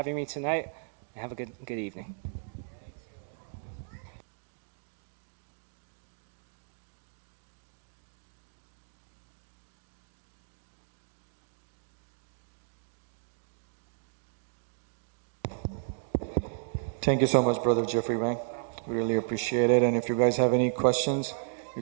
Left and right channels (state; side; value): silent; left; digital silence